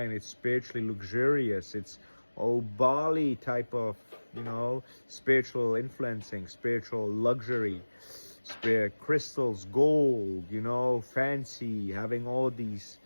it's spiritually luxurious, it's Bali type of, spiritual influencing, spiritual luxury, spirit crystals, gold, fancy, having all these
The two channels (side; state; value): both; inverted; correlation -1.00